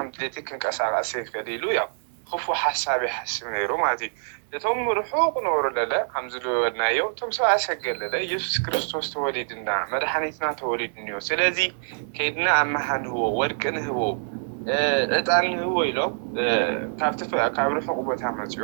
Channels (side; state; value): left; silent; digital silence